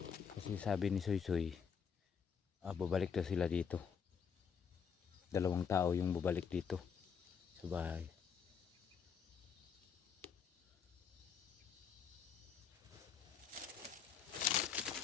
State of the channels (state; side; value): quieter; right; 6.8 dB